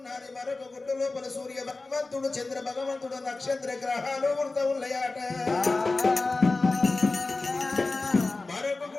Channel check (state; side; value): quieter; right; 3.5 dB